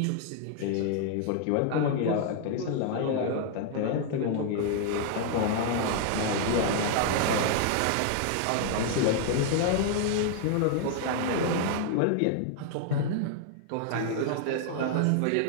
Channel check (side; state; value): both; different; correlation 0.00